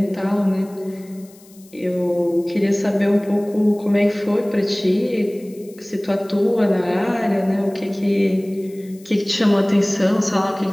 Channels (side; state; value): left; noise; hiss, 26 dB below the sound